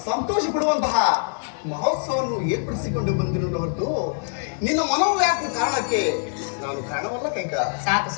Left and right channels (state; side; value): silent; right; 58 dB below the other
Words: ಸಂತೋಷ ಪಡುವಂತಹ ಮಹೋತ್ಸವವನ್ನು ಏರ್ಪಡಿಸಿಕೊಂಡು ಬಂದಿರೋ ಹೊರತು ನಿನ್ನ ಮನೋವ್ಯಾಕುಲ ಕಾರಣಕ್ಕೆ ನಾನು ಕಾರಣವಲ್ಲ ಕೈಕ. ಸಾಕು